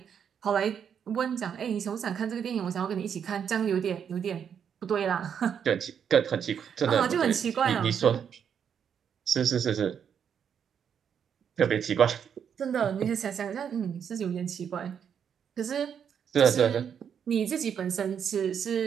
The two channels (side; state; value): left; quieter; 7.9 dB